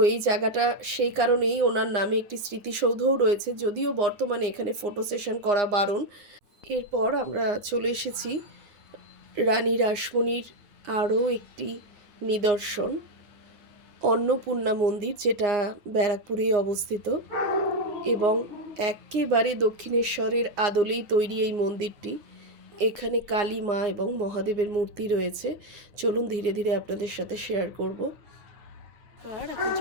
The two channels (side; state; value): left; late; 9.7 ms